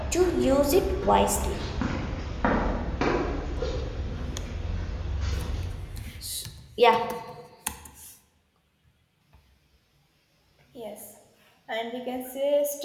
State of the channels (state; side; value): identical; both; correlation 1.00